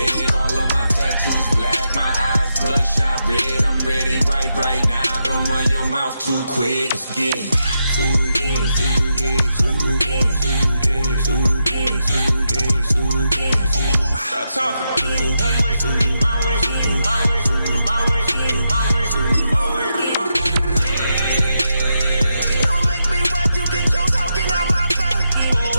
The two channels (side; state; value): both; inverted; correlation -0.85